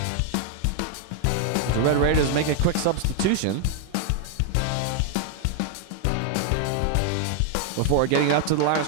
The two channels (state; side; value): different; both; correlation 0.00